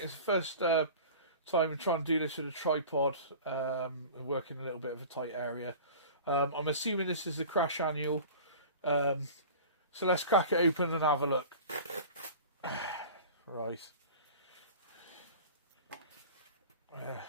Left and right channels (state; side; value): inverted; both; correlation -0.38